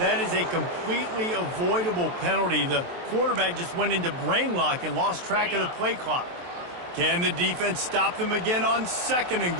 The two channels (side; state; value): left; late; 23 ms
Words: is a completely avoidable penalty. The quarterback just went into brain lock and lost track of the play clock. Can the defense stop them again on 2nd and